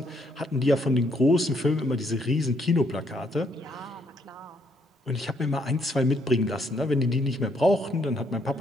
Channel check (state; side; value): normal; both; correlation 0.71